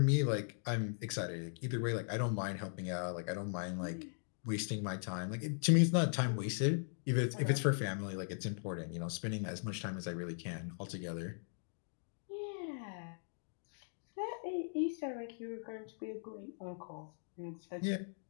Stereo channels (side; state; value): right; silent; digital silence